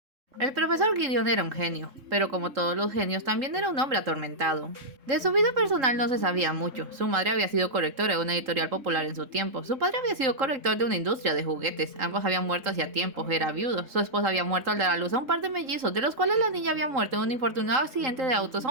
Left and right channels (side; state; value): left; late; 3.8 ms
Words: El profesor Gideon era un genio, pero como todos los genios también era un hombre atormentado. De su vida personal no se sabía mucho. Su madre había sido correctora de una editorial popular en su tiempo, su padre había sido corrector de una industria de juguetes, ambos habían muerto hacía tiempo, era viudo, su esposa había muerto al dar a luz a un par de mellizos, de los cuales la niña había muerto en un infortunado accidente de autos